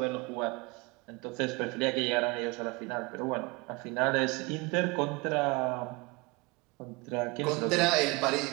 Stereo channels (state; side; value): quieter; left; 26.1 dB